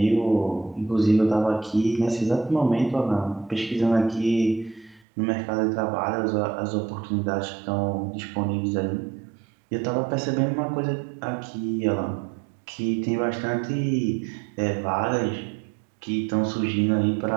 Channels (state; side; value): drops out; left; at 5.0 s